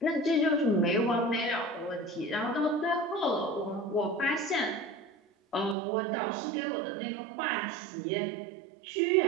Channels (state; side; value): drops out; left; at 5.8 s